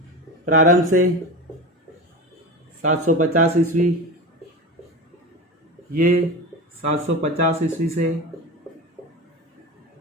प्रारंभ से 750 ईस्वी, ये 750 ईस्वी से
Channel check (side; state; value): both; normal; correlation 0.26